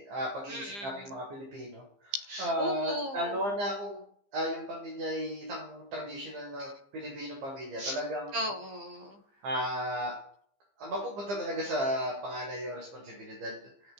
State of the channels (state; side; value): late; left; 15 ms